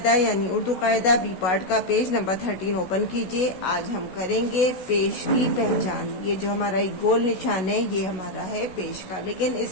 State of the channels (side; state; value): right; late; 16 ms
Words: یعنی اردو قاعدہ بی پارٹ کا پیج نمبر 13 اوپن کیجئے۔ آج ہم کریں گے پیش کی پہچان۔ یہ جو ہمارا ایک گول نشان ہے یہ ہمارا ہے پیش کا، لیکن